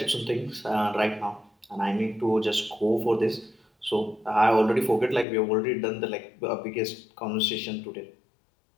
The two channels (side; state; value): right; drops out; at 5.2 s